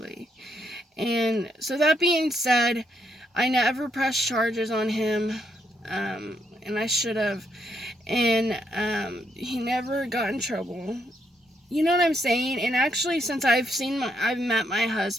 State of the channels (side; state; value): both; normal; correlation 0.76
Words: And so that being said, I never pressed charges on him, and I should have, and he never got in trouble. You know what I'm saying? And actually, since I've met my